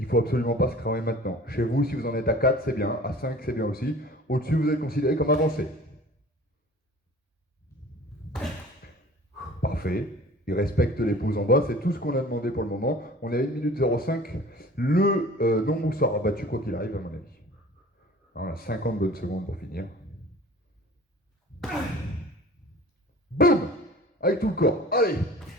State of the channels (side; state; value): both; normal; correlation 0.44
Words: ne faut absolument pas se cramer maintenant. Chez vous, si vous en êtes à 4, c'est bien. À 5, c'est bien aussi. Au-dessus, vous êtes considéré comme avancé. Parfait. Il respecte les pauses en bas. C'est tout ce qu'on a demandé pour le moment. On est à 1 minute 05. Le nombre sera battu quoi qu'il arrive, à mon avis. On a 50 bonnes secondes pour finir. Boum! Avec tout le corps. Allez!